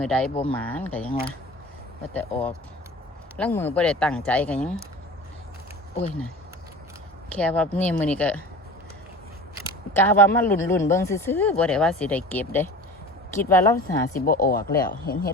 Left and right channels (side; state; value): both; normal; correlation 0.38